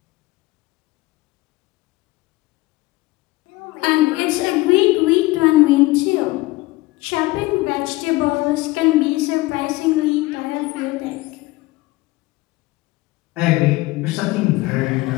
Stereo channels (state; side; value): quieter; right; 20.5 dB